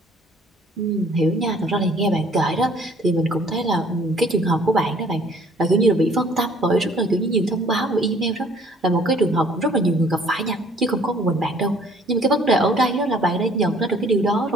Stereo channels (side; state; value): both; normal; correlation 0.57